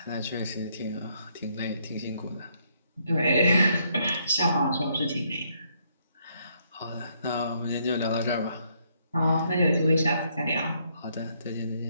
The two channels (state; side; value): inverted; both; correlation -0.71